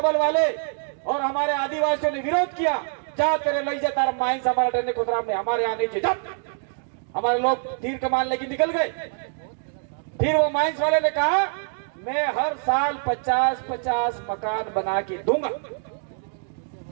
वाले और हमारे आदिवासियों ने विरोध किया। जा तेरे लई जाता माइंस हमारा डरने खुदरा में हमारे यहाँ नहीं जब हमारे लोग तीर कमान लेके निकल गए। फिर वो माइंस वाले ने कहा मैं हर साल 50-50 मकान बना के दूंगा।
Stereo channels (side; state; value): left; silent; 60 dB below the other